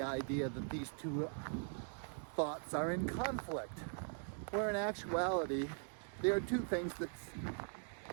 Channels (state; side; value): silent; left; 50 dB below the other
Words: idea that these two thoughts are in conflict, where in actuality they are two things that